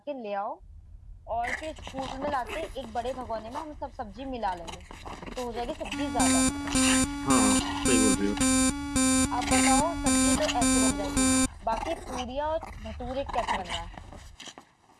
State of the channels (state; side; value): identical; both; correlation 1.00